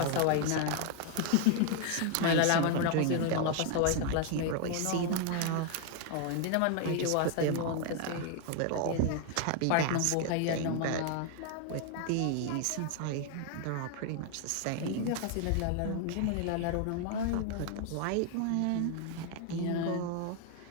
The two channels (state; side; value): different; both; correlation 0.00